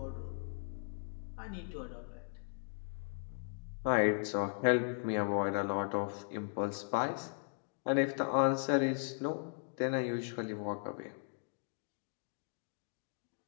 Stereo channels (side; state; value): right; silent; 53 dB below the other